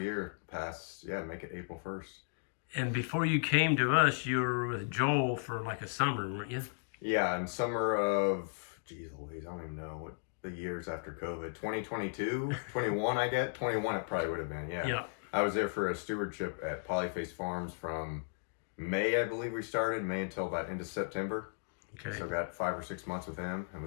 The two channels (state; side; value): silent; right; digital silence